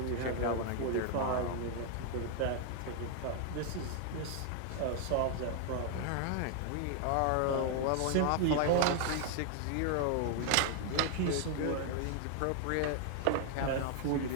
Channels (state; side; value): different; both; correlation 0.00